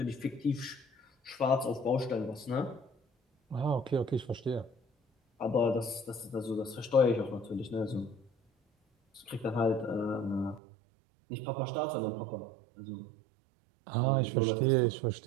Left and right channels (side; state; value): left; drops out; at 10.6 s